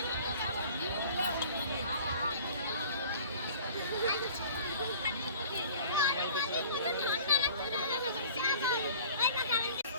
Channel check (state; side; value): inverted; both; correlation -0.48